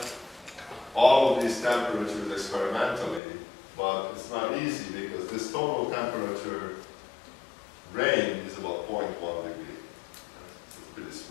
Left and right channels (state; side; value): drops out; right; at 3.2 s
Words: all of these temperatures experimentally, but it's not easy because this total temperature range is about 0.1 degree. It's pretty